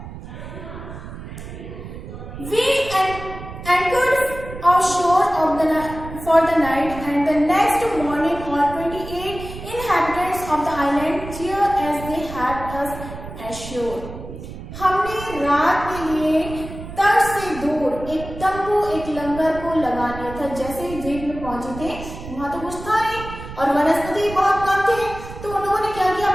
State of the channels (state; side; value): noise; right; rumble, 11 dB below the sound